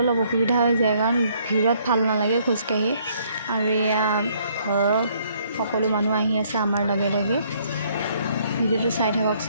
অলপ অসুবিধা হৈ যায়, কাৰণ ভিৰত ভাল নালাগে খোজকাঢ়ি। আৰু এয়া ঘৰৰ সকলো মানুহ আহি আছে আমাৰ লগে লগে। ভিডিঅ'টো চাই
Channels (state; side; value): inverted; both; correlation -0.65